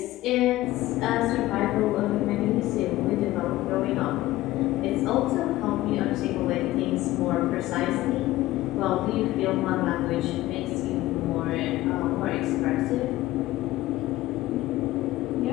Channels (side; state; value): right; quieter; 16.6 dB